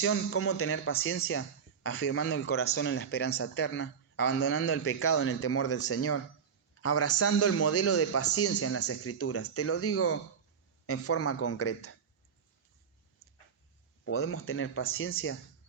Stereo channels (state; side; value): quieter; left; 6.8 dB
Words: ¿cómo tener paciencia? Afirmando el corazón en la esperanza eterna, abandonando el pecado en el temor del Señor, abrazando el modelo de paciencia en las Escrituras. Te lo digo en forma concreta. Podemos tener paciencia